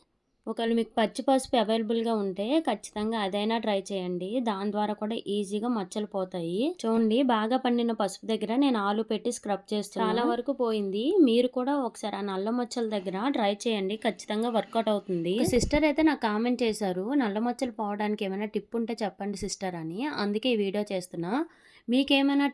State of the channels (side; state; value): both; identical; correlation 1.00